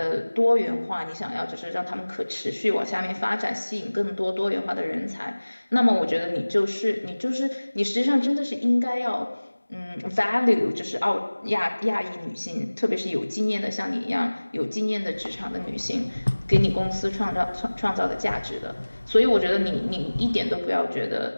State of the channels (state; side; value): inverted; both; correlation -1.00